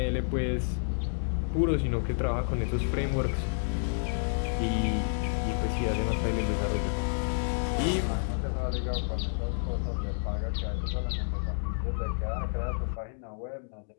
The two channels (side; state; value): right; silent; digital silence